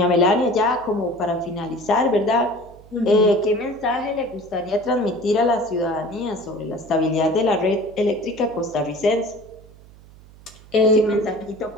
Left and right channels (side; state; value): right; noise; hum, 23 dB below the sound